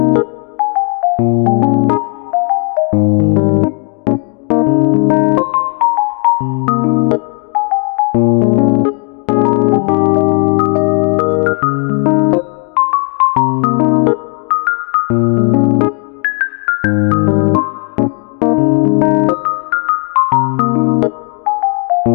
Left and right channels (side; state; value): right; quieter; 37.0 dB